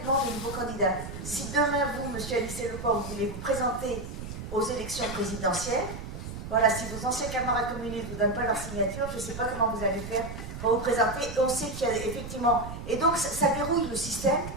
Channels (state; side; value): noise; right; rumble, 9 dB below the sound